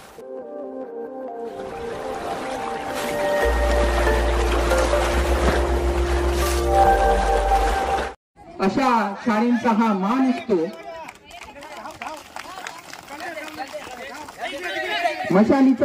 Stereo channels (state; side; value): identical; both; correlation 1.00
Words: शाळेंचा हा मान असतो।